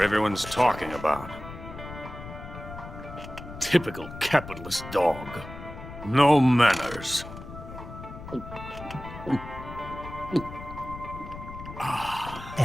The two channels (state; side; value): noise; left; rumble, 12 dB below the sound